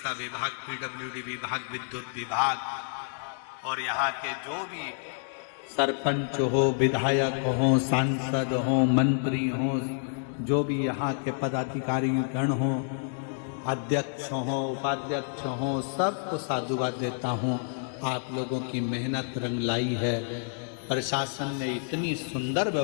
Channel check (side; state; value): right; silent; digital silence